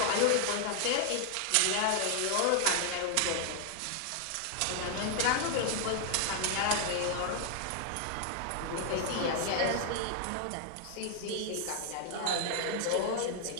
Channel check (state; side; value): different; both; correlation 0.00